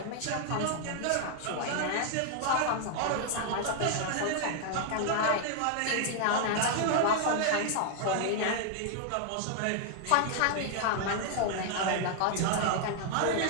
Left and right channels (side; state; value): both; different; correlation 0.00